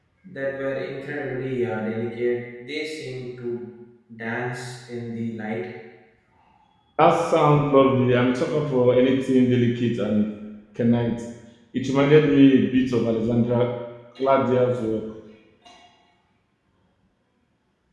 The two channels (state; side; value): identical; both; correlation 1.00